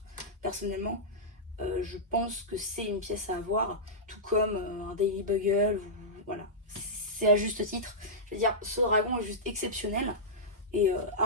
Personnellement, je pense que c'est une pièce à avoir, tout comme un Daily Bugle. Voilà, c'est à juste titre. Je veux dire, ce dragon est juste exceptionnel. Et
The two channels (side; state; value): both; normal; correlation -0.12